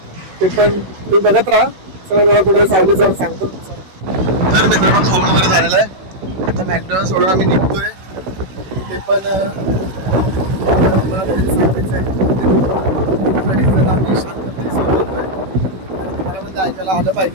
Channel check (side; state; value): left; late; 16 ms